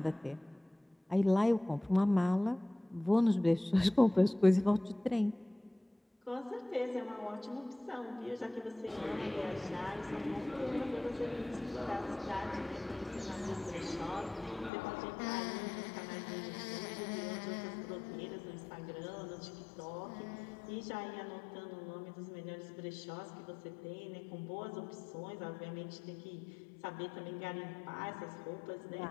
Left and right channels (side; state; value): right; drops out; at 14.7 s